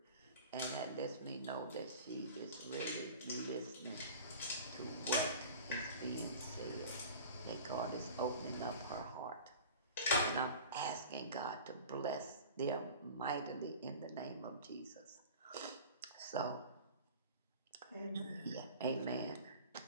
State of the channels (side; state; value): both; inverted; correlation -0.39